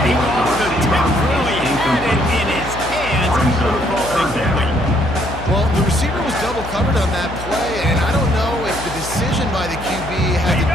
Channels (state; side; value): noise; left; hum, 11 dB below the sound